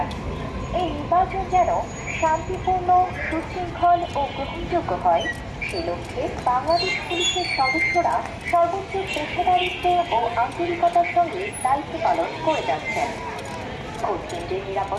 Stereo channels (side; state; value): both; identical; correlation 1.00